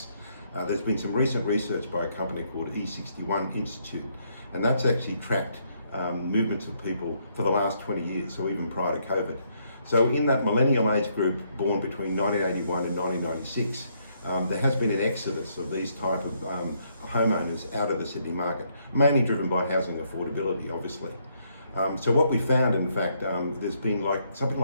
There's been some recent research by a company called E61 Institute, and that's actually tracked movements of people for the last 20 years, so even prior to COVID. So in that millennial age group born between 1981 and 1996, there has been an exodus of these type of homeowners out of the Sydney market, mainly driven by housing affordability, obviously. So what we found, in fact, there's been something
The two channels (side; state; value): both; inverted; correlation -0.72